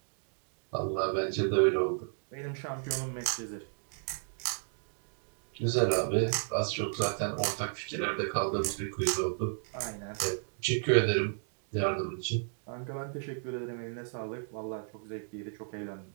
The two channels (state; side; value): silent; left; 55 dB below the other